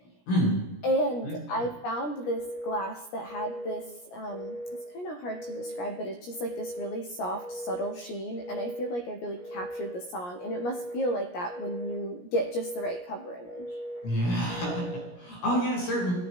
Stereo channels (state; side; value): late; right; 17 ms